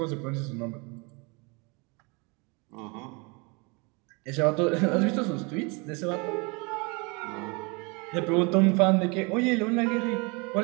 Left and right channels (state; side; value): quieter; left; 29.9 dB